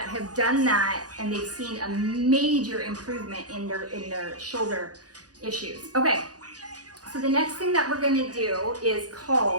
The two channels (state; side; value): late; left; 0.68 ms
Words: have done that and they've seen a major improvement in their shoulder issues. Okay, so the next thing that we're gonna do is